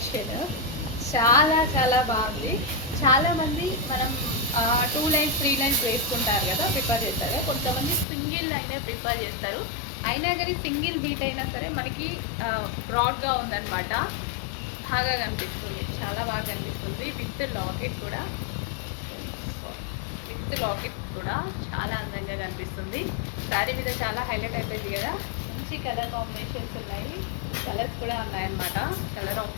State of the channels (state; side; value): drops out; right; at 8.1 s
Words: చాలా చాలా బాగుంది. చాలామంది మనం 2 లైన్స్ 3 లైన్స్ వేసుకుంటారు కదా, ప్రిపేర్ చేస్తారు కదా. కొంతమంది సింగిల్ లైనే ప్రిపేర్ చేస్తారు. అయినా కానీ సింగిల్ బీట్ అయినా సరే మనకి బ్రాడ్గా ఉందన్నమాట. బాగా కనిపిస్తుంది, చాలా బాగా కనిపిస్తుంది. విత్ లాకెట్ కూడా చాలా అందంగా కనిపిస్తుంది. శారీ మీద చాలా హైలైట్ అయిపోయింది కదా. మంచి కలర్ కాంబినేషన్స్ ఉన్నాయి, కలర్స్ కూడా ఉన్నాయన్నమాట. కలర్